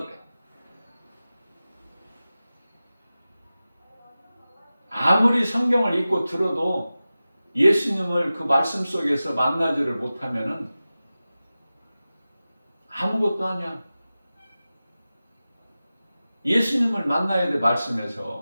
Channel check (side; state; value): both; inverted; correlation -0.95